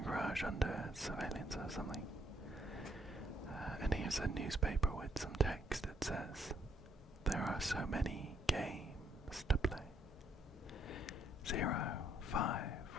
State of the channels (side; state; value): both; normal; correlation 0.70